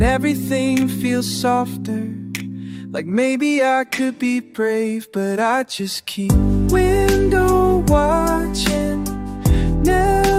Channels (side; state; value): both; identical; correlation 1.00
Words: everything feel softer. Like maybe I could be brave, but I just keep window watching,